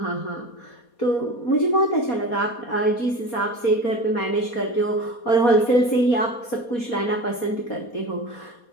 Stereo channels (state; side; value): late; right; 4.2 ms